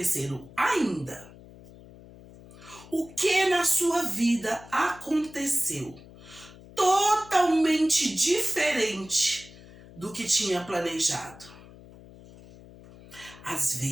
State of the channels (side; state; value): left; noise; hum, 20 dB below the sound